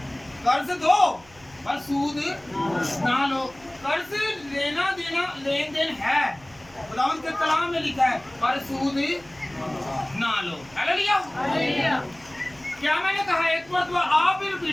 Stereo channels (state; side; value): noise; right; hum, 26 dB below the sound